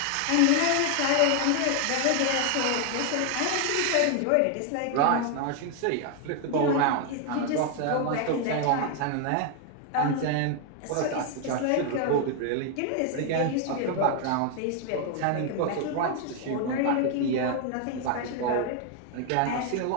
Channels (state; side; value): different; both; correlation 0.01